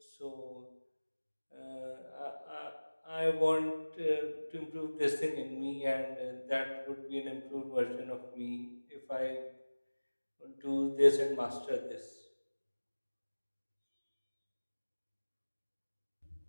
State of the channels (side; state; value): both; inverted; correlation -1.00